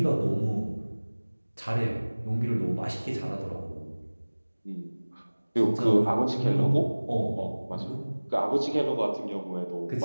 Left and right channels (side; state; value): both; inverted; correlation -1.00